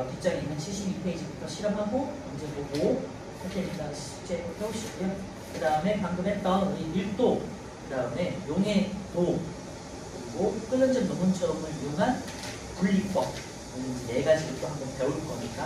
뒷장에 있는 72페이지부터 실험하고 문제 보고 할 테니까 숙제 해오시고요. 그 다음에 방금 했던 우리 밀도, 그 다음에 용해도, 그리고 끓는 점 녹음점을 이용한 분리법, 이 네 가지를 또 한번 배울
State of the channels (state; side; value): identical; both; correlation 1.00